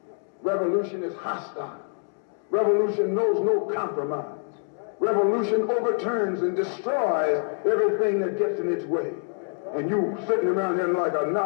Revolution is hostile. Revolution knows no compromise. Revolution overturns and destroys everything that gets in its way. And you sitting around here like a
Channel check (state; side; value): silent; right; 61 dB below the other